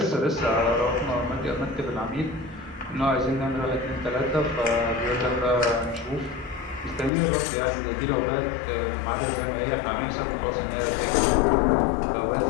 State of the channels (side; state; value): right; drops out; at 7.1 s